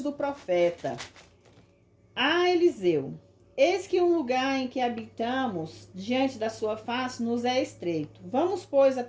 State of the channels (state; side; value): identical; both; correlation 1.00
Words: do profeta a Eliseu: Eis que um lugar em que habitamos, diante da sua face, nos é estreito. Vamos, pois,